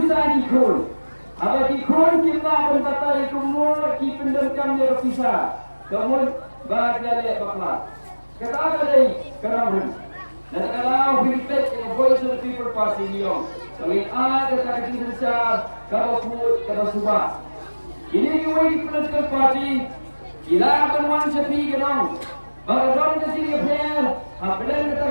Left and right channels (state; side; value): inverted; both; correlation -1.00